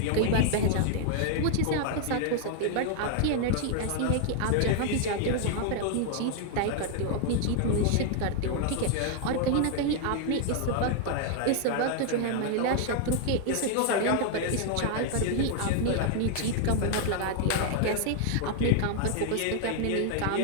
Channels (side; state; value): both; different; correlation -0.01